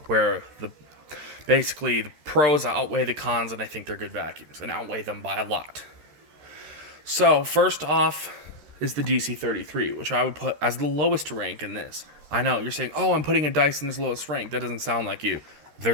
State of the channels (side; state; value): left; late; 13 ms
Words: where basically the pros outweigh the cons, and I think they're good vacuums, and outweigh them by a lot. So first off is the DC33, which I would put as the lowest rank in this. I know, you're saying, oh, I'm putting a Dyson as lowest rank. That doesn't sound like you.